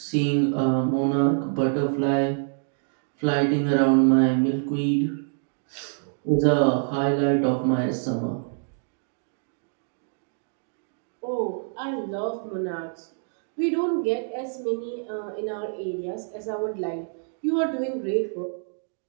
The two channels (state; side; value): silent; left; digital silence